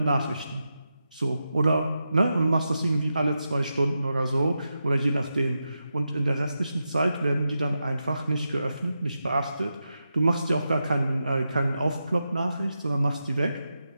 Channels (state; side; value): inverted; both; correlation -0.88